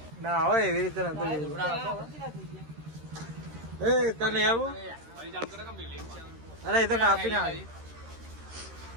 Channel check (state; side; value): late; left; 13 ms